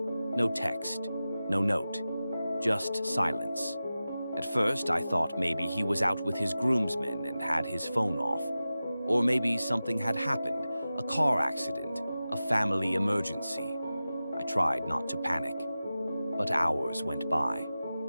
no text, no note, just silence. At first, I thought maybe he was out with his groomsmen and had his phone off. Or maybe something had happened, a car accident, a family emergency. I tried not to panic. But hours went by.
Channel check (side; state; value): both; inverted; correlation -0.94